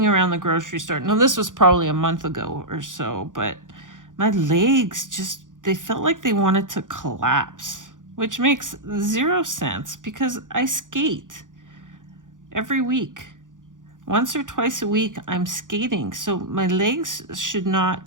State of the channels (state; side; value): late; left; 0.88 ms